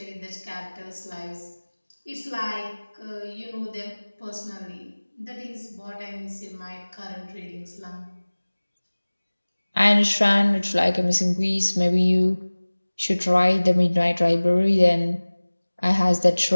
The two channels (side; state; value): both; inverted; correlation -1.00